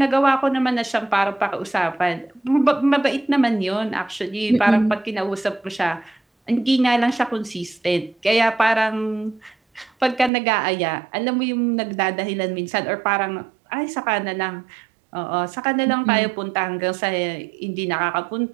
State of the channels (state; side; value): drops out; left; at 10.3 s